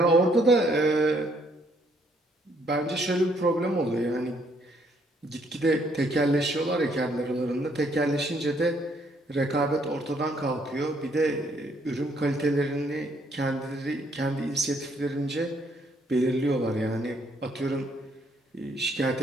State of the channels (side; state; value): both; normal; correlation 0.68